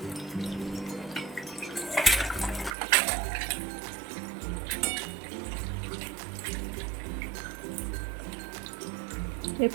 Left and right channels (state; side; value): drops out; left; at 2.8 s